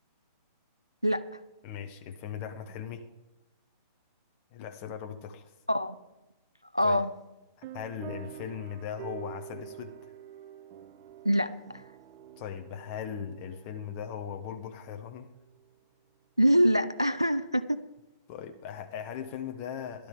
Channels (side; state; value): both; inverted; correlation -0.85